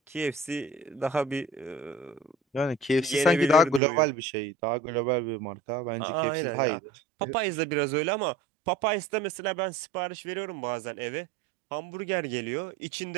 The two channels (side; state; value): left; drops out; at 3.8 s